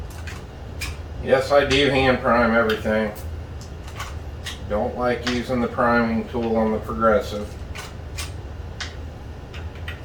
Yes, I do hand prime everything. Don't like using the priming tool on the Progressive.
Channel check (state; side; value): identical; both; correlation 1.00